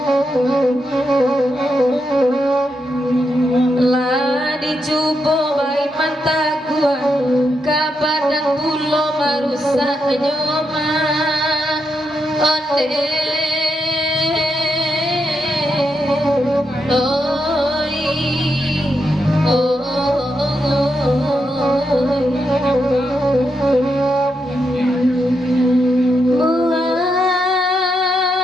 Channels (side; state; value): both; normal; correlation 0.83